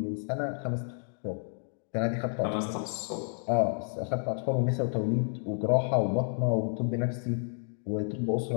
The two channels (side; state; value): right; silent; 57 dB below the other